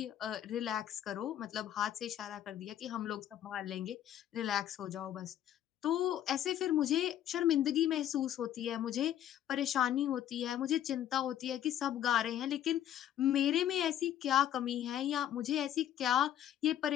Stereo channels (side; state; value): right; quieter; 11.2 dB